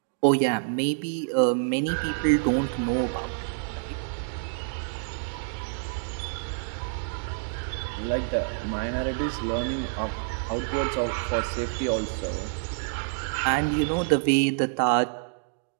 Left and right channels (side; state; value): left; silent; digital silence